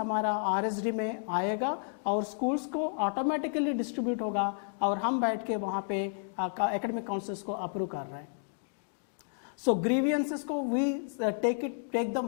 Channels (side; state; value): right; silent; digital silence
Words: RSD में आएगा और स्कूल्स को ऑटोमेटिकली डिस्ट्रीब्यूट होगा और हम बैठ के वहाँ पे एकेडमिक काउंसलर्स को अप्रूव कर रहे हैं। सो ग्रीवियंसेस को we take them